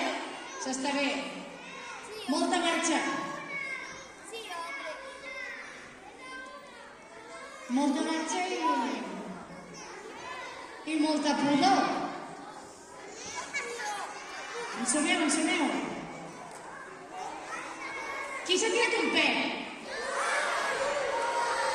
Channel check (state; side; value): identical; both; correlation 1.00